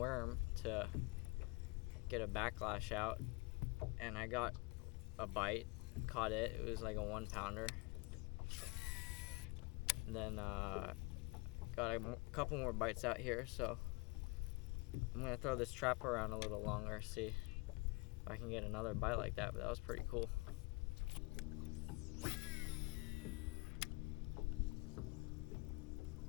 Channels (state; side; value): quieter; right; 26.5 dB